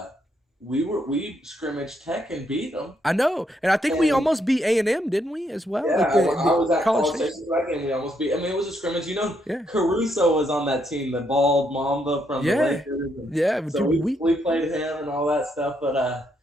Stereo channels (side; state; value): both; normal; correlation 0.75